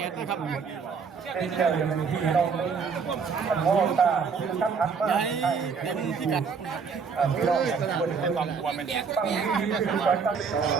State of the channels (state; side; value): quieter; left; 5.7 dB